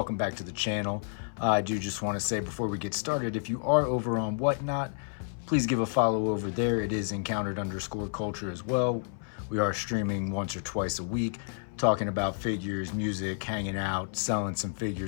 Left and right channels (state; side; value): silent; right; 58 dB below the other